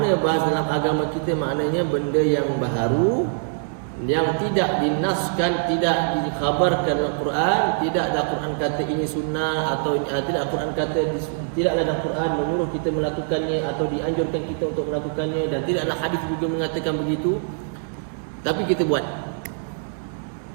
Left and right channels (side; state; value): left; silent; 63 dB below the other